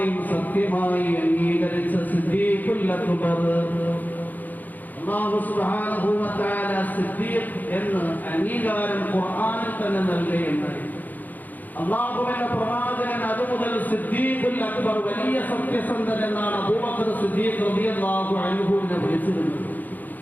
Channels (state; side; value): late; right; 0.083 ms